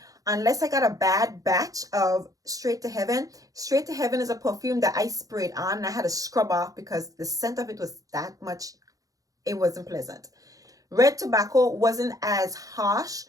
Unless I got a bad batch of Straight to Heaven. Straight to Heaven is a perfume that I sprayed on and I had to scrub off because the scent of it was that much, it wasn't pleasant. Red Tobacco wasn't as harsh,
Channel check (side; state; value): left; late; 0.17 ms